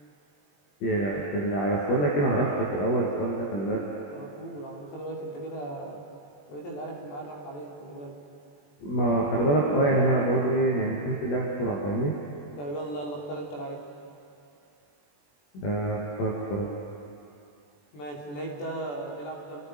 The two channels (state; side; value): late; right; 21 ms